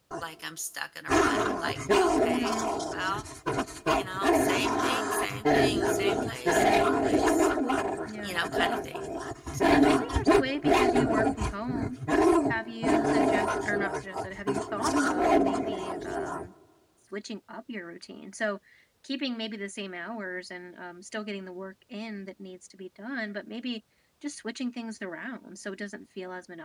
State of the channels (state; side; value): identical; both; correlation 1.00